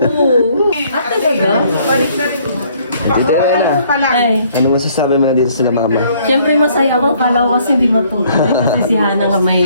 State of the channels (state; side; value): inverted; both; correlation -0.63